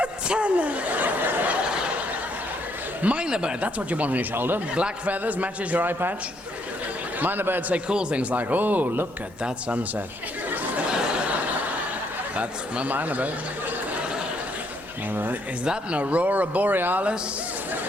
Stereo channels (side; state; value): both; normal; correlation 0.71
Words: tenner. Minor bird, that's what you want on your shoulder. Black feathers, matches your eye patch. Minor birds say cool things like, oh, look at that sunset. That's my minor bird. Is that an aurora borealis?